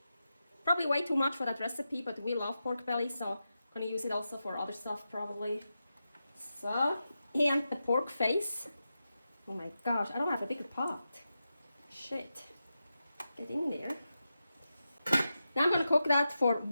Probably way too much for that recipe, but we love pork belly, so I'm gonna use it also for other stuff probably. So, and the pork face. Oh my gosh, I don't have a bigger pot. Shit. Get in there. Now I'm gonna cook that for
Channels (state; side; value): inverted; both; correlation -0.90